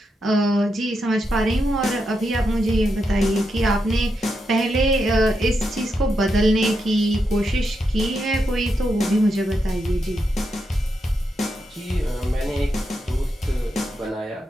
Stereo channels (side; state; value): both; normal; correlation 0.84